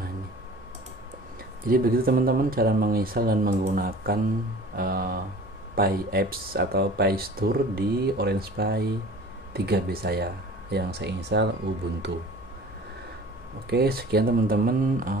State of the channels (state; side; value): normal; both; correlation 0.43